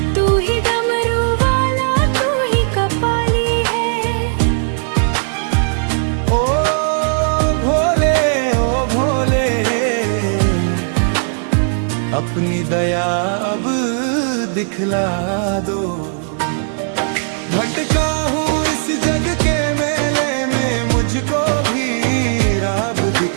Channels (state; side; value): silent; left; digital silence